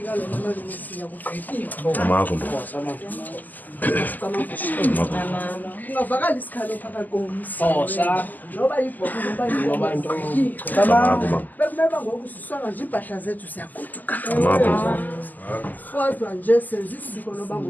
lo mama nomisiya kugqitywa. AMAGQIRHA. Ungavakala isikhalo phakathi komsi. Noba yibhobo noba into. AMAGQIRHA. Bekumeba ngoku sisonga nje impahla zethu siyagoduka. AMAGQIRHA. Kodwa nje senza isiko loba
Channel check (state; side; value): late; right; 0.084 ms